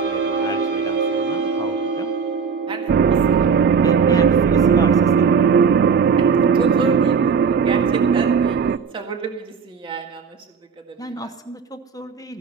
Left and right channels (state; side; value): quieter; left; 6.1 dB